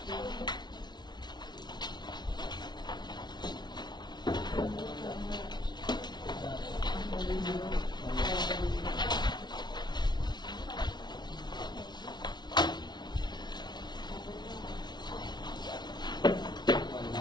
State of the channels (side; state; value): right; late; 0.20 ms